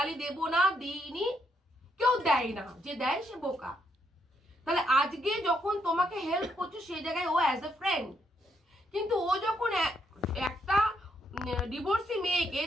দেব না, দিইনি কেউ দেয় না, যে দেয় সে বোকা। তাহলে আজকে যখন তোমাকে হেল্প করছে সেই জায়গায় ও অ্যাজ এ ফ্রেন্ড, কিন্তু ও যখন একটা ডিভোর্সি মেয়েকে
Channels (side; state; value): both; normal; correlation 0.76